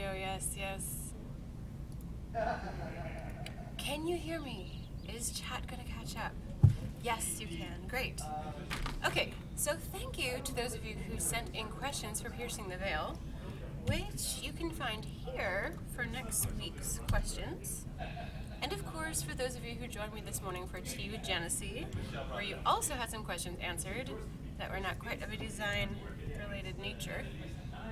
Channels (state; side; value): identical; both; correlation 1.00